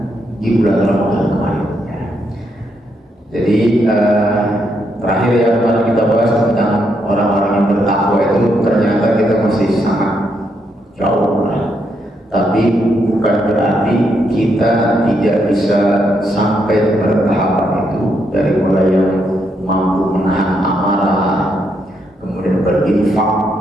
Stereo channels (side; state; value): both; normal; correlation 0.78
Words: di bulan Ramadan kemarin. Jadi terakhir yang kemarin kita bahas tentang orang-orang yang bertakwa itu, ternyata kita masih sangat jauh lah. Tapi bukan berarti kita tidak bisa sampai bertahapan itu, dari mulai yang mampu menahan amarah, kemudian berinfak